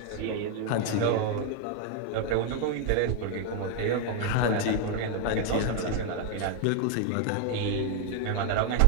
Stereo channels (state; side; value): different; both; correlation 0.01